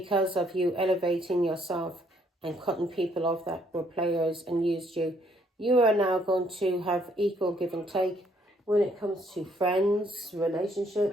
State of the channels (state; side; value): normal; both; correlation 0.68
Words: of you elevating yourself and cutting people off that were players and used you, you are now going to have equal give and take when it comes to friends,